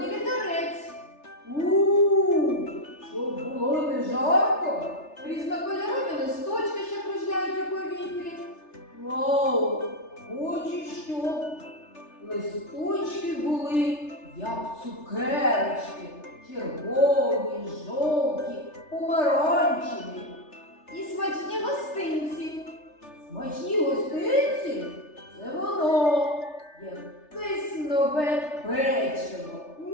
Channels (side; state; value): right; late; 3.3 ms